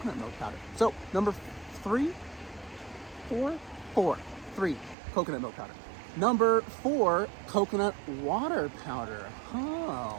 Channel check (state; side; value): drops out; left; at 5.0 s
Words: milk powder. So number 3, coconut milk powder. Number 4, coconut water powder.